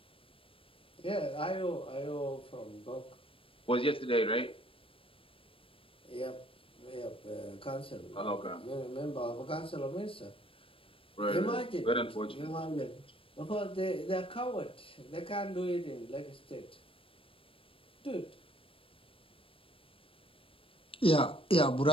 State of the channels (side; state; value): right; late; 0.26 ms